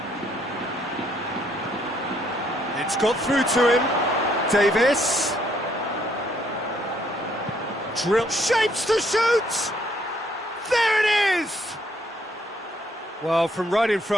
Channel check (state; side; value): normal; both; correlation 0.69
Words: It's got through to him. Davis. Drill. Shapes to shoot! There it is! Well, from right in